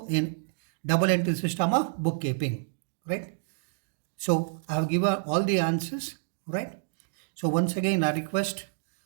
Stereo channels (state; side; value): silent; left; digital silence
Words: in double entry system of bookkeeping, right? So I have given all the answers, right? So once again, I request